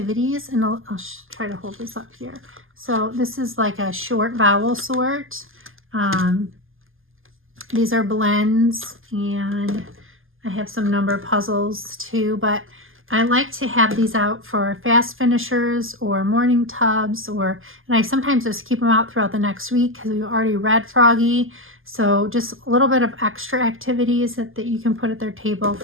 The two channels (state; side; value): late; left; 0.59 ms